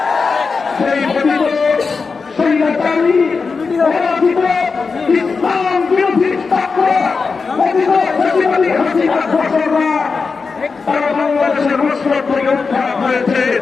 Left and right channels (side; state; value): right; quieter; 4.8 dB